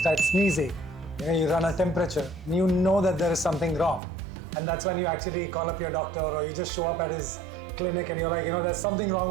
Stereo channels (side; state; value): left; drops out; at 4.0 s